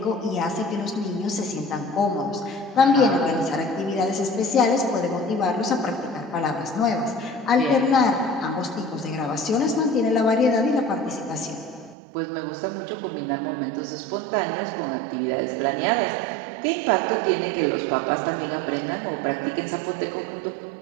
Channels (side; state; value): left; drops out; at 12.0 s